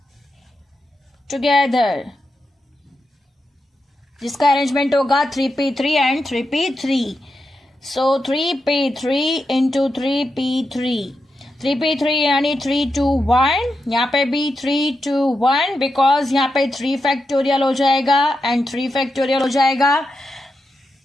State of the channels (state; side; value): normal; both; correlation 0.87